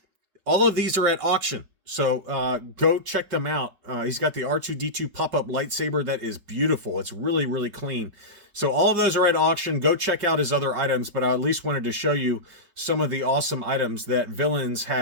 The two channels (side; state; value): left; late; 5.1 ms